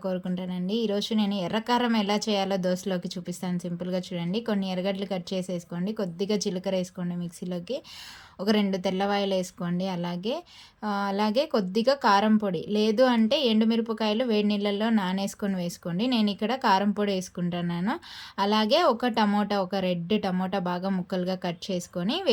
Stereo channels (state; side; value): identical; both; correlation 1.00